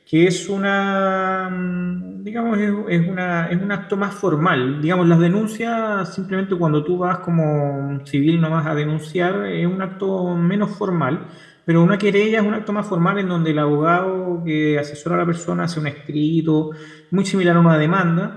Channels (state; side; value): identical; both; correlation 1.00